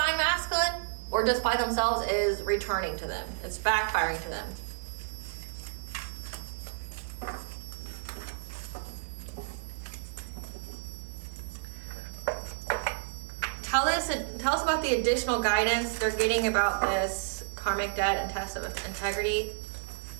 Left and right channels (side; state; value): left; silent; digital silence